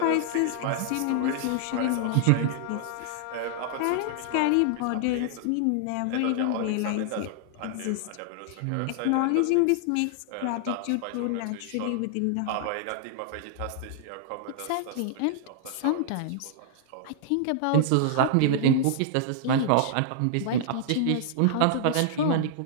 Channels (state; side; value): different; both; correlation -0.01